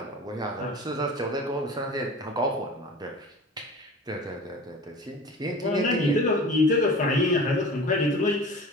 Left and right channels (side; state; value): both; normal; correlation 0.38